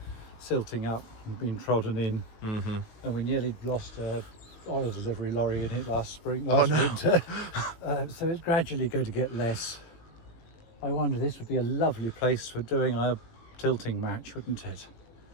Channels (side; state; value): right; late; 18 ms